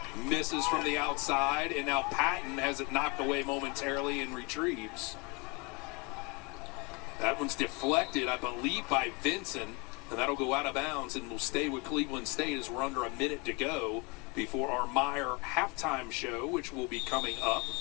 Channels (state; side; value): quieter; right; 28.8 dB